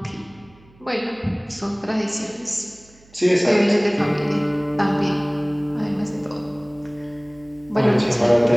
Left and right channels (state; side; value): noise; right; hum, 27 dB below the sound